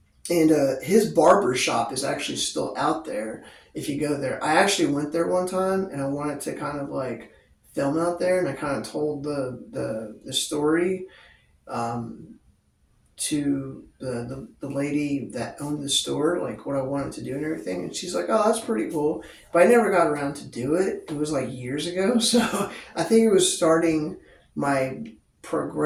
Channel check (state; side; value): identical; both; correlation 1.00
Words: And his barber shop is actually still out there if you go there. I actually went there one time and I wanted to kind of like film out there, and I kind of told the story um, to the lady that owned the store, like what I wanted to do and everything. And she's like, oh, that's pretty cool. But I never got around to do it. It was like years ago. So I think it was starting my